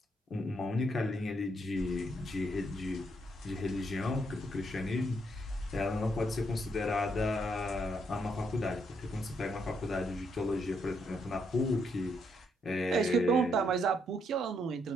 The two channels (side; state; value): both; normal; correlation 0.76